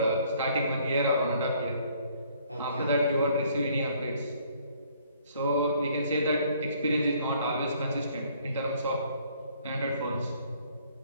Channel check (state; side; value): inverted; both; correlation -0.62